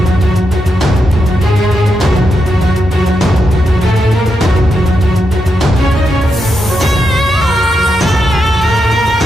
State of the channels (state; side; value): normal; both; correlation 0.85